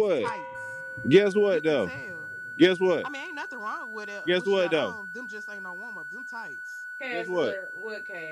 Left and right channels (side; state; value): both; identical; correlation 1.00